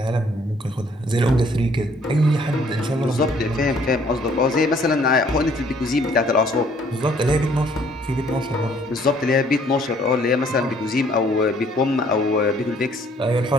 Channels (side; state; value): both; normal; correlation 0.61